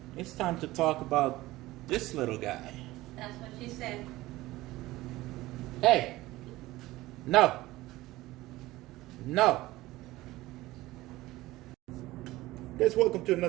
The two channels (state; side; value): quieter; left; 18.1 dB